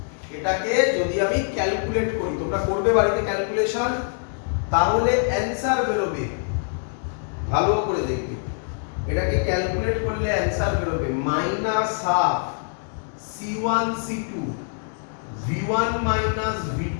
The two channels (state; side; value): silent; right; 62 dB below the other